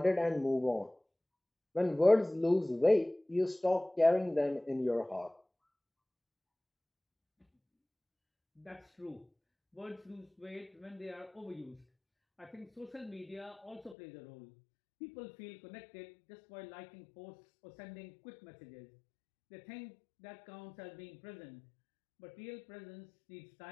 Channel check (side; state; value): right; drops out; at 14.0 s